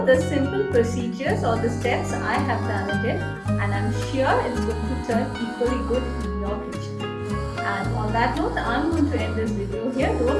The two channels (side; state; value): both; identical; correlation 1.00